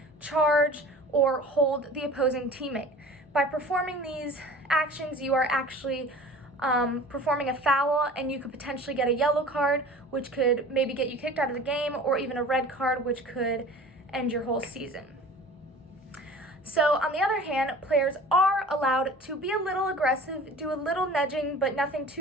charge, or hold the opposing teammate. By performing these actions, you are actually performing a foul, and you could potentially get a yellow card, which could maybe get you kicked out of the game, or even a red card, which could end your whole season. So on the other hand, players are allowed to be a little aggressive, do a little nudging, but nothing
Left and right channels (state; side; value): normal; both; correlation 0.42